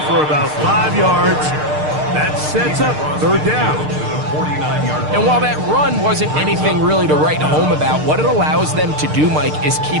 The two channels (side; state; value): left; late; 6.6 ms